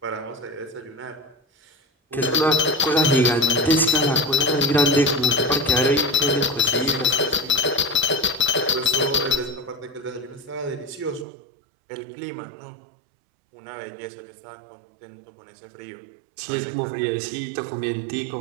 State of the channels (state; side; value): drops out; left; at 11.2 s